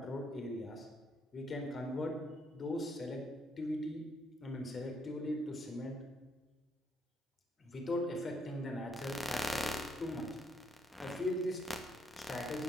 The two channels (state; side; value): normal; both; correlation 0.73